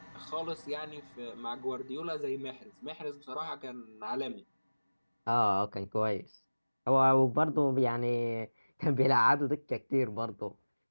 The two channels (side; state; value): both; inverted; correlation -1.00